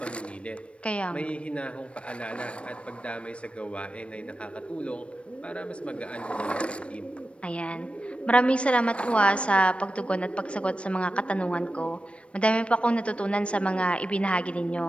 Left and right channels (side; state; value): right; late; 0.060 ms